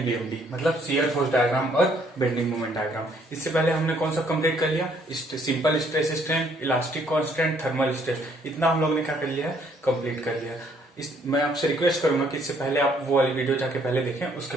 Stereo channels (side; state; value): both; normal; correlation 0.65